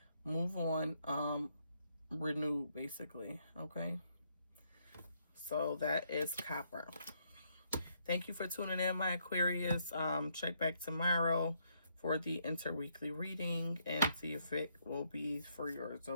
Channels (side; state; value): both; inverted; correlation -0.73